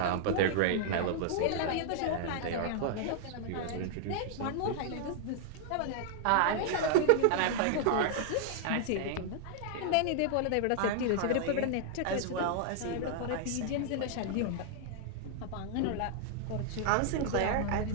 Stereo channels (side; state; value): both; different; correlation -0.01